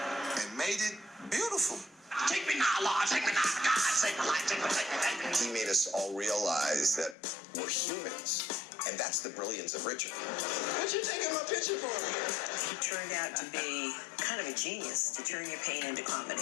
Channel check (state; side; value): drops out; right; at 7.2 s